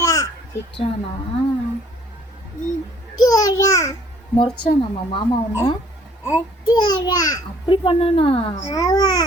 திட்டானா? முறைச்சானாமா மாமா உன்ன? அப்படி பண்ணானா?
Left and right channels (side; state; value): both; normal; correlation 0.59